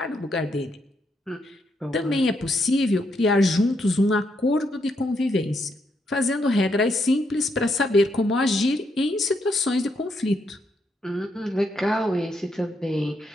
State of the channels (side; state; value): both; normal; correlation 0.78